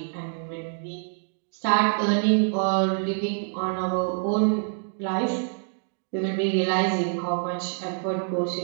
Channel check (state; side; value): silent; left; 59 dB below the other